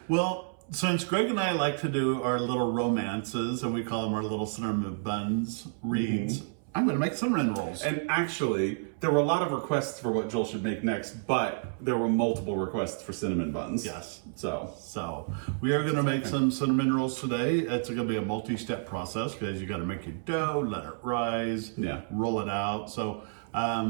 Well, since Greg and I like to do our little romances, and we call them our little cinnamon buns reads, I'm going to make cinnamon rolls. And actually, there were a lot of requests for what Joel should make next, but there were multiple requests for cinnamon buns. Yes. So, We are going to make some cinnamon rolls today. It's going to be a multi-step process because you got to make your dough, let it rise, Yeah. roll it out. So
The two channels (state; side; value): silent; left; 58 dB below the other